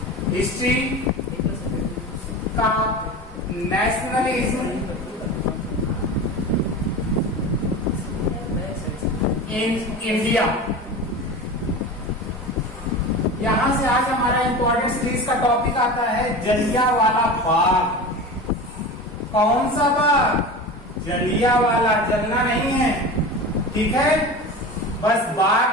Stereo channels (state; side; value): normal; both; correlation 0.30